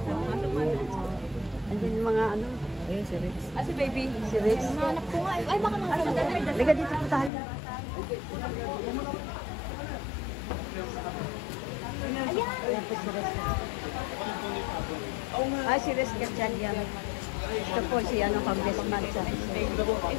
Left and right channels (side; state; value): right; drops out; at 7.3 s